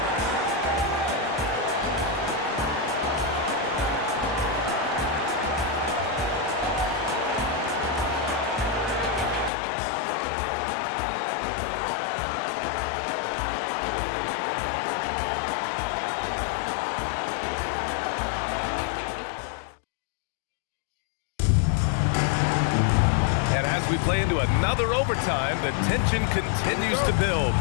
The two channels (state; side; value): drops out; right; at 9.5 s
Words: And as we play into another overtime, the tension continues to build.